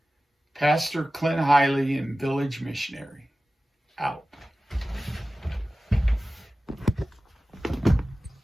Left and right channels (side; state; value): both; normal; correlation 0.96